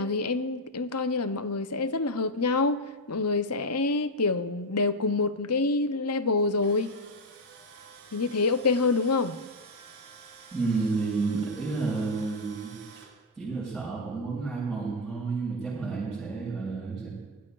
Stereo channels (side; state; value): both; normal; correlation 0.03